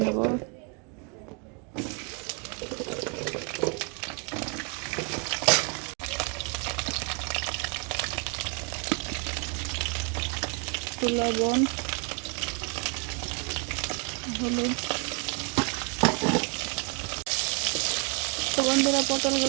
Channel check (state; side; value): quieter; left; 35.2 dB